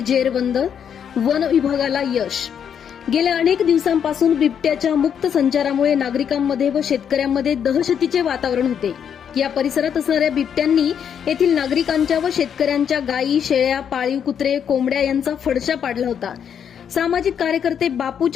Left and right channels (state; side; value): quieter; right; 8.2 dB